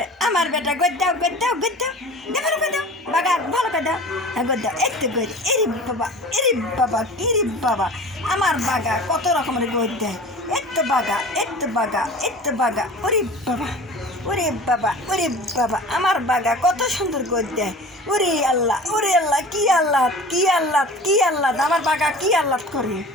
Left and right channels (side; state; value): both; normal; correlation 0.39